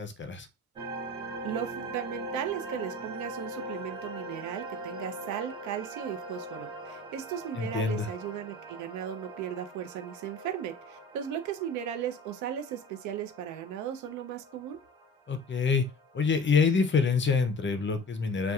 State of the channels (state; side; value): normal; both; correlation 0.39